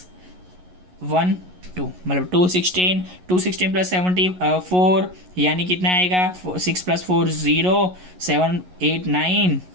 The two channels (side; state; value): left; late; 11 ms